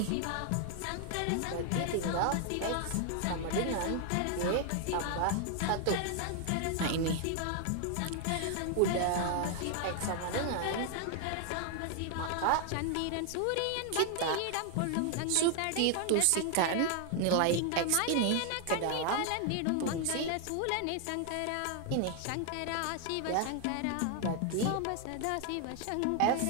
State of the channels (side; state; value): both; different; correlation 0.00